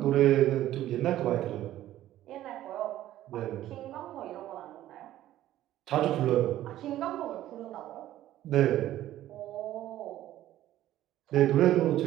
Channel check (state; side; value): quieter; left; 13.6 dB